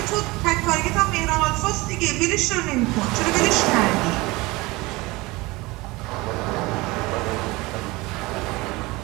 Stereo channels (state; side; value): quieter; left; 22.3 dB